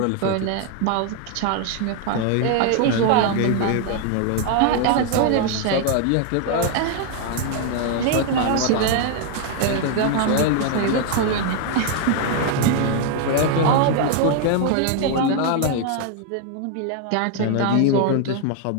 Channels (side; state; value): both; different; correlation 0.00